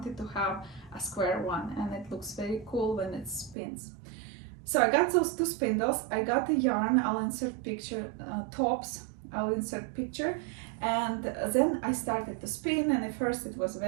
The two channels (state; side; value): drops out; left; at 3.6 s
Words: to have a square one, and it looks very cool when it spins. So I got those 2 spindles, I got the yarn, I'll insert picture, tops, I'll insert picture, and then I started to spin, and at first it was